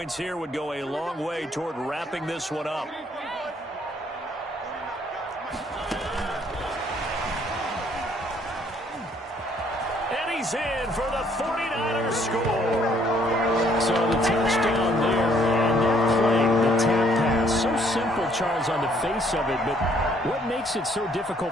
here would go a long way toward wrapping this one up. And he's in for the 49ers score. So the touchdown there, and that play, the tap pass, so simple, Charles, on the face of it, but what makes it so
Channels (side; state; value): both; normal; correlation 0.65